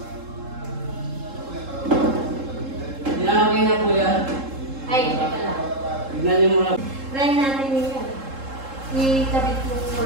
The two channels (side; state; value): left; late; 3.7 ms